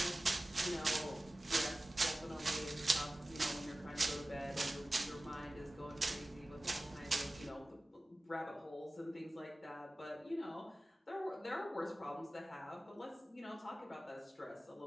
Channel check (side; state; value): both; normal; correlation 0.97